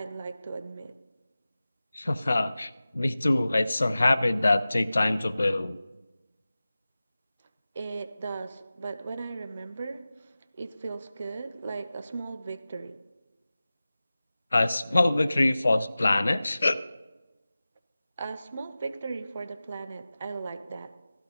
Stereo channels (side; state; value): both; inverted; correlation -0.96